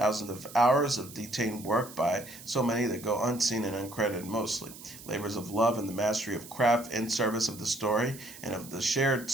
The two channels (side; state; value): right; noise; hiss, 16 dB below the sound